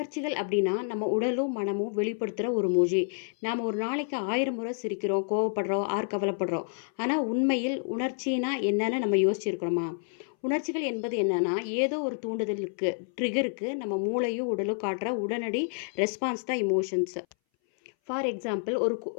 அப்படின்னா நம்ம உடலும் மனமும் வெளிப்படுத்துகிற ஒரு மொழி. நாம் ஒரு நாளைக்கு 1000 முறை சிரிக்கிறோம், கோவப்படுறோம், கவலைப்படுறோம். ஆனால் உண்மையில் உணர்ச்சினா என்னன்னு நம்ம யோசிச்சிருக்கிறோமா? உணர்ச்சிகள் என்பது என்னன்னா, ஏதோ ஒரு தூண்டுதலுக்கு, ட்ரிகருக்கு நம்ம மூளையும் உடலும் காட்டுற உடனடி ரெஸ்பான்ஸ் தான் இமோஷன்ஸ். ஃபார் எக்ஸாம்பிள், ஒரு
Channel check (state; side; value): silent; right; 59 dB below the other